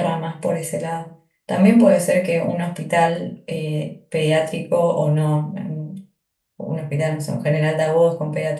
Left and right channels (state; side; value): identical; both; correlation 1.00